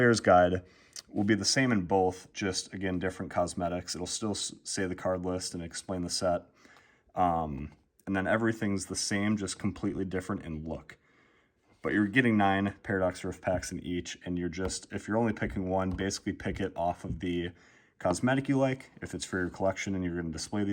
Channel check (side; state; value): both; identical; correlation 1.00